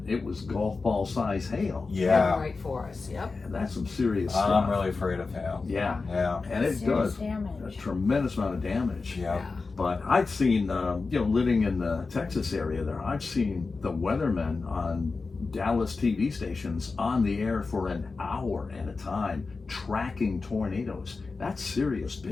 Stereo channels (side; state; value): right; quieter; 4.2 dB